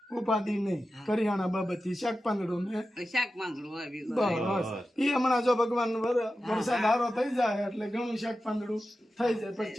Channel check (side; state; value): both; normal; correlation 0.93